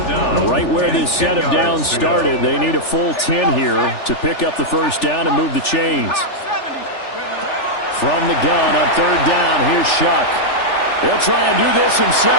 down. Right where this set of downs started, they need a full 10 here to pick up the 1st down and move the chains. From the gun on 3rd down, here's Shuck. He'll try and do this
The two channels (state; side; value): late; right; 3.4 ms